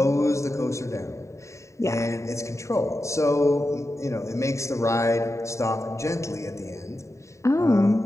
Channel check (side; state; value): right; late; 0.14 ms